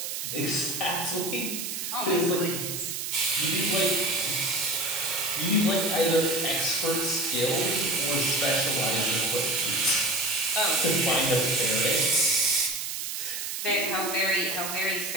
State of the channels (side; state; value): right; noise; hiss, 4 dB below the sound